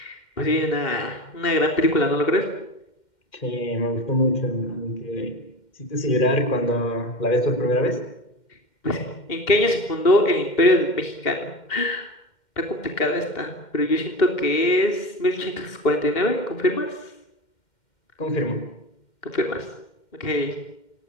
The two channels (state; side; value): late; right; 2.1 ms